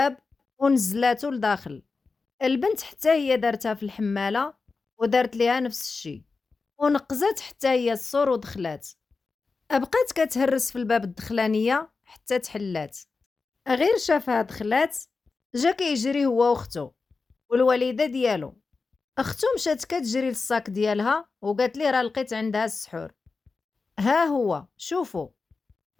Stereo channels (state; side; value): quieter; right; 4.2 dB